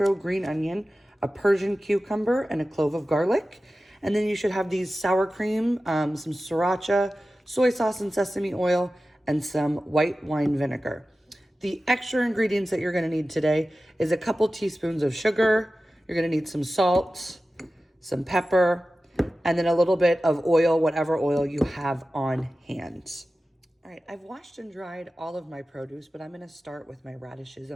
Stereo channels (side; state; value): both; normal; correlation 0.95